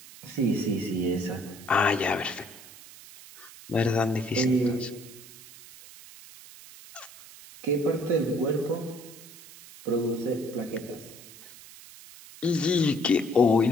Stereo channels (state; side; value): noise; right; hiss, 19 dB below the sound